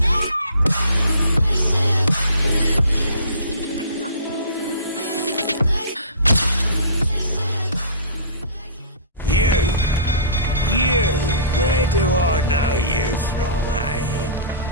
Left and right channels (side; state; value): both; inverted; correlation -0.42